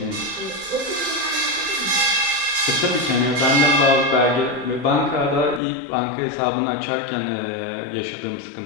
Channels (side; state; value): right; drops out; at 5.6 s